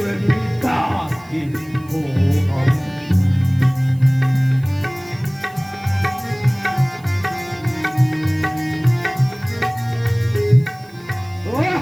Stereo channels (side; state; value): right; noise; hiss, 27 dB below the sound